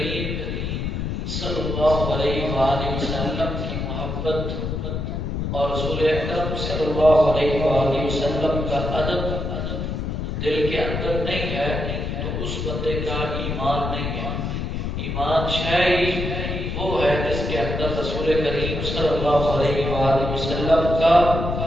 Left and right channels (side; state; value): left; noise; rumble, 3 dB below the sound